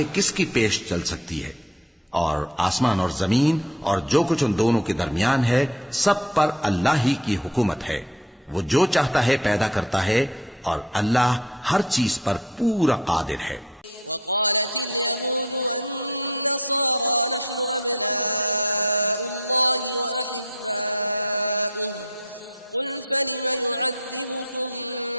किसकी पेश चल सकती है। और आसमान और जमीन और जो कुछ उन दोनों के दरमियान है सब पर अल्लाह ही की हुकूमत है। वो जो चाहता है पैदा करता है और अल्लाह हर चीज पर पूरा कादिर है। वक़ालत अल-यहूद वन-नसारा नहनु अब्नाउल्लाहि व अहिब्बाउहु क़ुल फलिम युअद्दिबुकुम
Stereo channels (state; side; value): normal; both; correlation 0.41